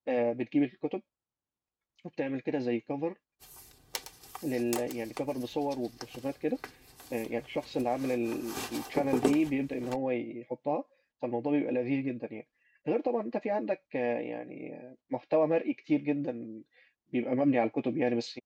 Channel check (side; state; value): both; identical; correlation 1.00